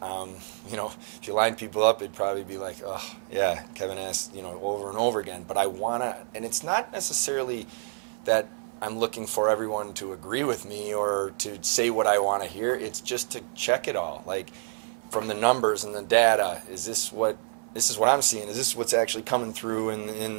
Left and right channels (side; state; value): left; silent; digital silence